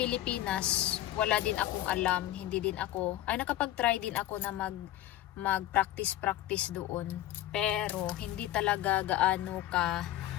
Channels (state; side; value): quieter; right; 14.2 dB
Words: wala din akong alam, nakapag-try din ako na mag-practice doon, pero hindi talaga gaano ka